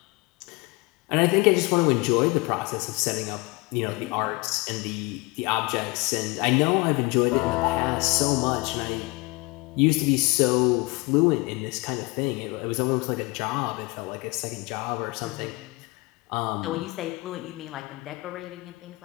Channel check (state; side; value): quieter; right; 25.0 dB